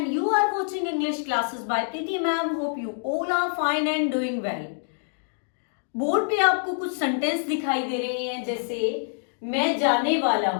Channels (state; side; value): silent; right; digital silence